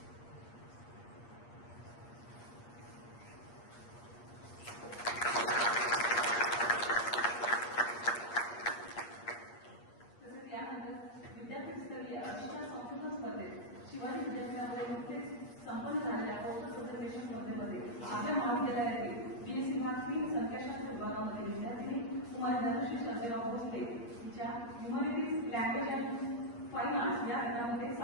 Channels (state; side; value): late; right; 8.5 ms